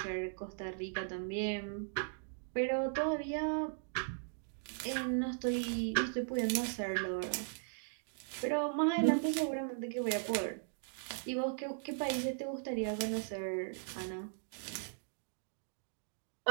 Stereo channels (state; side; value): silent; left; digital silence